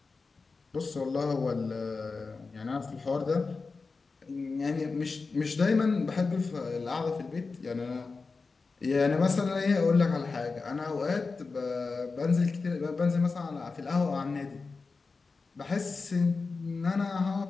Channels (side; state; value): right; quieter; 4.3 dB